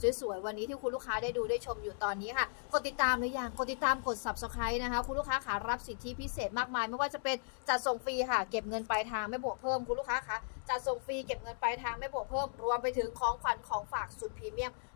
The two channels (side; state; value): right; silent; digital silence